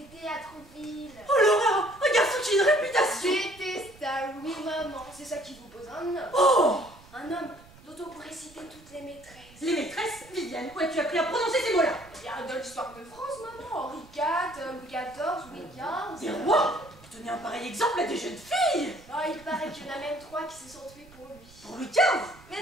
à Trouville. Oh l'horreur! Un garçon qui a une réputation. Détestable, oui maman. C'est ça qui vous pose un homme. Oh! Un homme dont on pourrait citer toutes les maîtresses. Les maîtresses, Viviane, où as-tu appris à prononcer ces mots-là? Il y a dans l'histoire de France, maman. Henri IV, Louis XIV, Louis XV. Des rois? Donner un pareil exemple à des jeunes filles. Oh, il paraît qu'il y en a même 3 qui se sont tués pour lui. Pour Louis XV? Mais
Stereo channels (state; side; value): noise; right; rumble, 23 dB below the sound